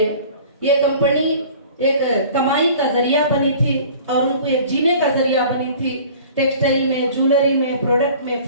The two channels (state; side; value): inverted; both; correlation -0.46